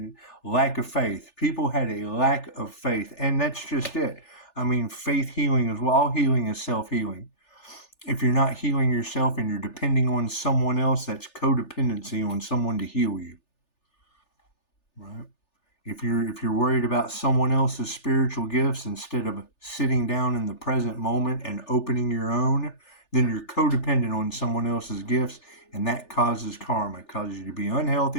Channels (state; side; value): late; right; 3.4 ms